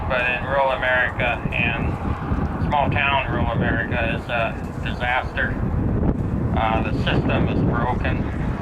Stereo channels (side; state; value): both; identical; correlation 1.00